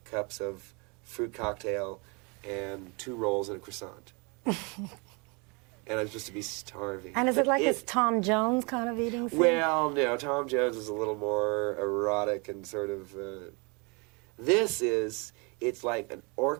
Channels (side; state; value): left; quieter; 31.0 dB